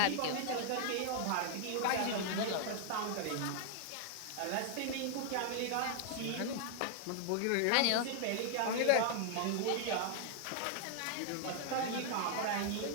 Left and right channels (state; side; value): different; both; correlation 0.00